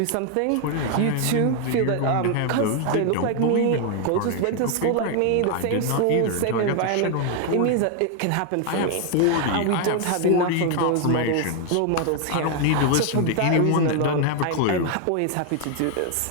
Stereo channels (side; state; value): both; different; correlation 0.00